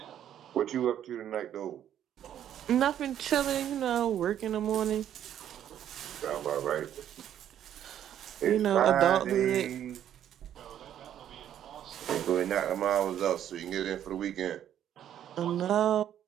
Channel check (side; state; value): left; quieter; 10.5 dB